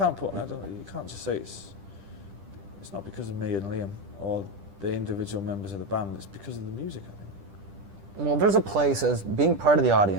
just say it's not because of me and Liam or the individual members of the band. It's because of the music, I think. Well, there's a place as being part of the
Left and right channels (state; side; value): late; left; 10 ms